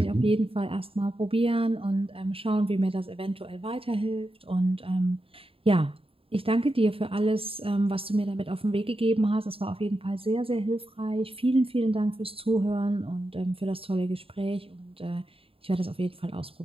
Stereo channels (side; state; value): left; late; 0.27 ms